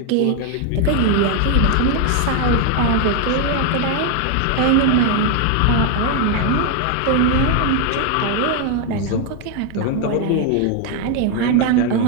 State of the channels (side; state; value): both; different; correlation 0.01